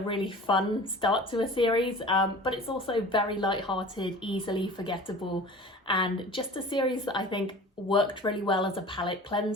fun start to a series, but it's also very light-hearted, easily forgettable, and just a series that I think worked really well as a palate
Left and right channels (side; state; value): both; normal; correlation 0.40